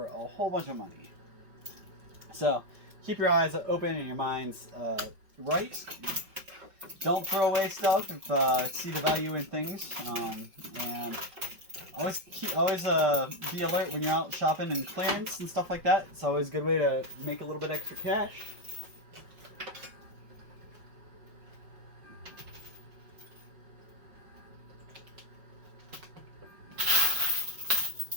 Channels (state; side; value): late; left; 5.4 ms